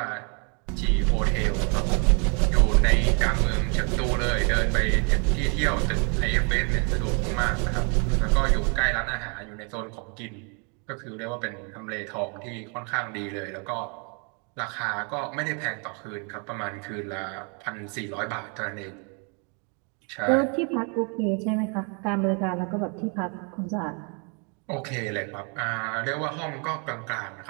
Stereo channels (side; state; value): left; quieter; 36.7 dB